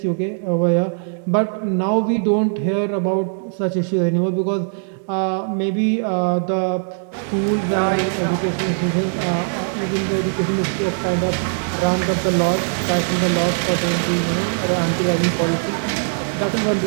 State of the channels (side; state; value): left; silent; digital silence